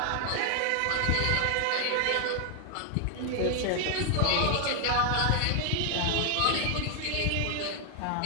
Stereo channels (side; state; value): both; different; correlation 0.00